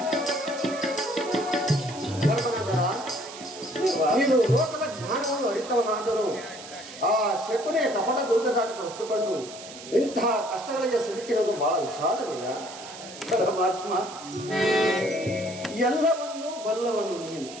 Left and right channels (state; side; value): noise; right; hiss, 14 dB below the sound